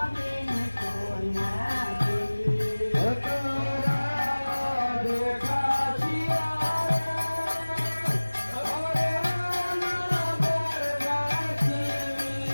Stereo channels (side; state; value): both; inverted; correlation -1.00